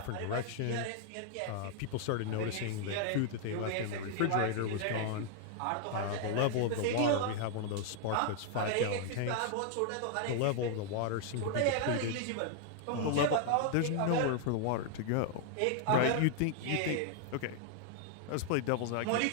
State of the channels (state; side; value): different; both; correlation 0.00